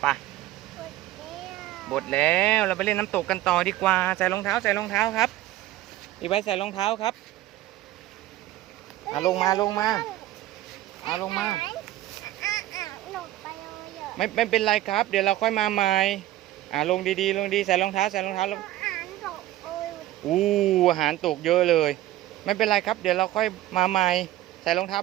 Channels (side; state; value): left; quieter; 15.0 dB